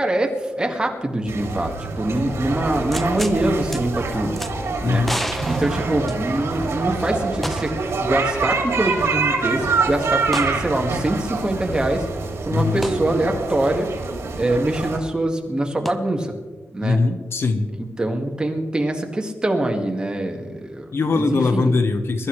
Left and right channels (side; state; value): both; normal; correlation 0.83